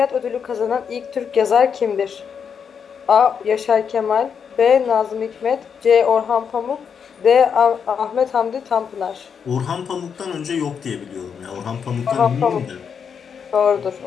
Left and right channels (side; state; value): right; quieter; 6.9 dB